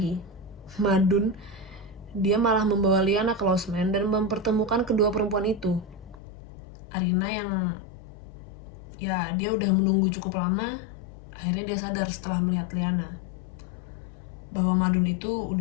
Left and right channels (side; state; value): right; drops out; at 6.2 s